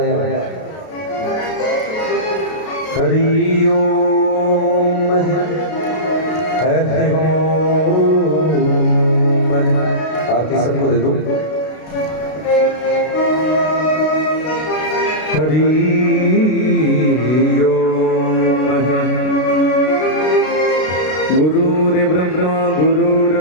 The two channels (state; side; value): late; right; 32 ms